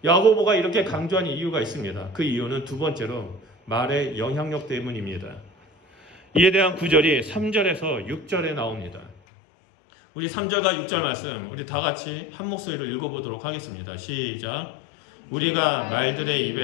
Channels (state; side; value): drops out; right; at 9.2 s